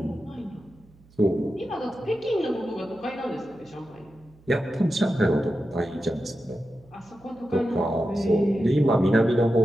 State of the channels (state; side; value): noise; right; hum, 27 dB below the sound